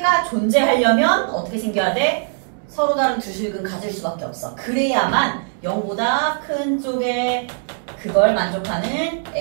존재하려면 어떻게 생겨야 돼? 서로 다른 두 식은 가질 수밖에 없어. 그래야만 0보다 큰 쪽에 그걸 만족하는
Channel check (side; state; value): left; silent; digital silence